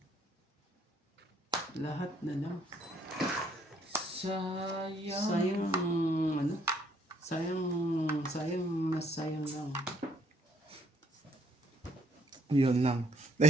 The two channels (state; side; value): normal; both; correlation 0.66